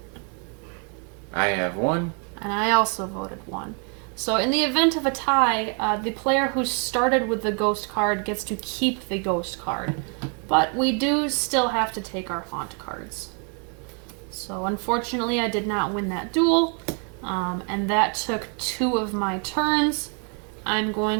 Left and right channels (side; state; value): left; quieter; 38.9 dB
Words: I have 1. And I also voted 1. So in the event of a tie, the player who started with the ghost card gets to keep the ghost card. But we do still have to take our haunt cards. So unfortunately, I did not win that duel, and that took 2 of my turns. I'm